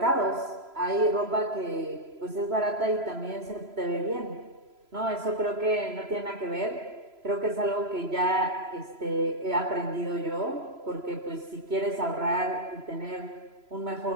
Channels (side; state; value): left; late; 3.0 ms